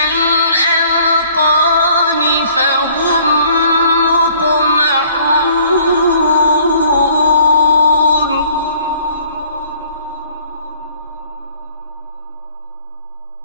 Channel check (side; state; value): both; inverted; correlation -0.56